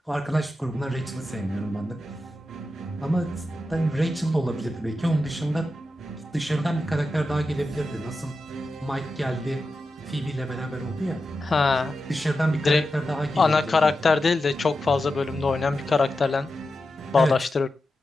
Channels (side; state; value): both; normal; correlation 0.90